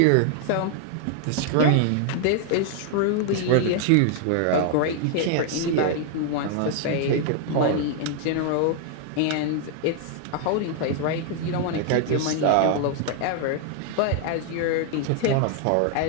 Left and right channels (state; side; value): different; both; correlation 0.00